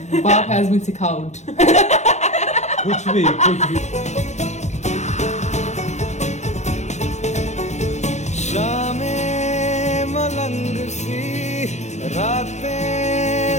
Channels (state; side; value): late; right; 0.33 ms